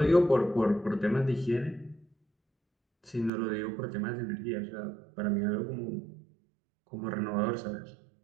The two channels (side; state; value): left; drops out; at 3.3 s